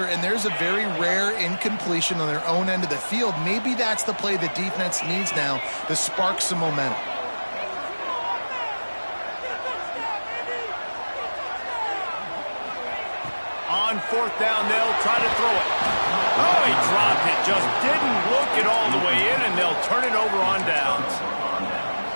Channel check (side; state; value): both; inverted; correlation -1.00